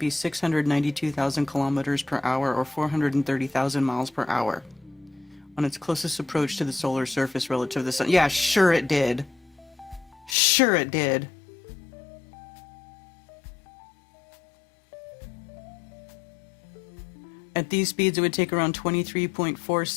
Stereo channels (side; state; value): right; drops out; at 10.4 s